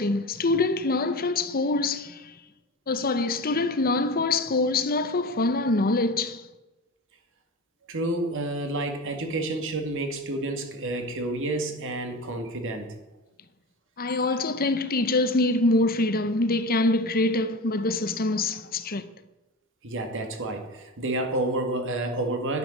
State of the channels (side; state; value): both; normal; correlation 0.28